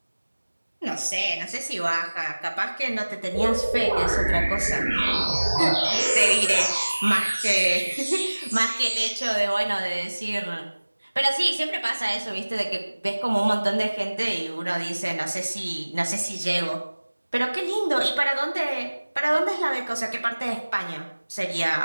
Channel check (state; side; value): inverted; both; correlation -1.00